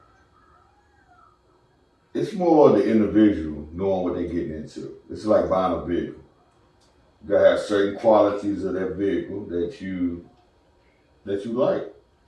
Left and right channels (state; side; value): identical; both; correlation 1.00